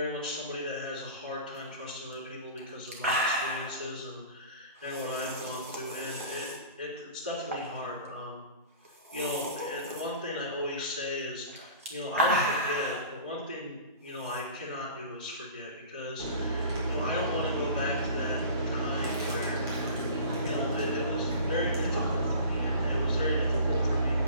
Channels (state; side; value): inverted; both; correlation -0.41